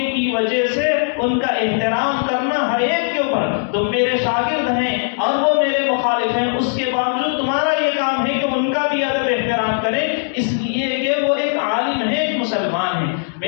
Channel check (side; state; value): right; silent; digital silence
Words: کی وجہ سے ان کا احترام کرنا ہر ایک کے اوپر، تم میرے شاگرد ہیں اور وہ میرے مخالف ہیں، اس کے باوجود تمہارا یہ کام ہے کہ ان کا بھی ادب احترام کریں، اس لیے کہ وہ ایک عالم ہے، ایک مسلمان ہے۔